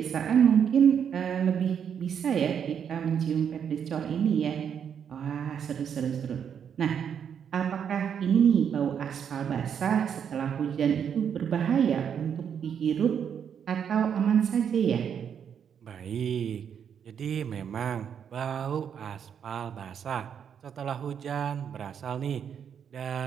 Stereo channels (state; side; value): quieter; left; 7.9 dB